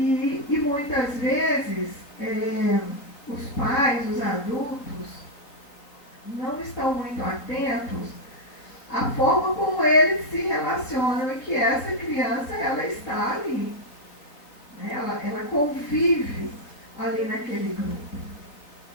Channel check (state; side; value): late; right; 3.6 ms